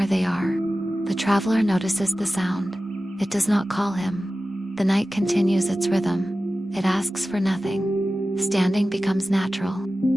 they are. The traveler notices the sound. It does not call him. The night continues its rhythm. It asks for nothing. Standing becomes natural.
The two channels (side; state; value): both; normal; correlation 0.95